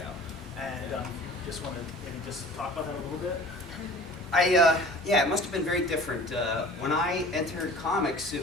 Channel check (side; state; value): both; normal; correlation 0.44